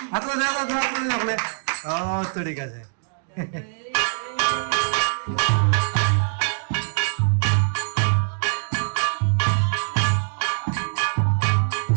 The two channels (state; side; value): silent; left; digital silence